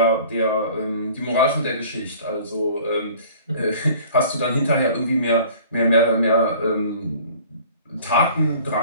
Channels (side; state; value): both; inverted; correlation -0.49